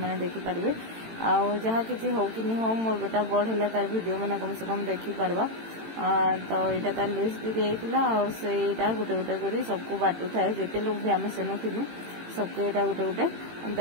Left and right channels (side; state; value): left; late; 18 ms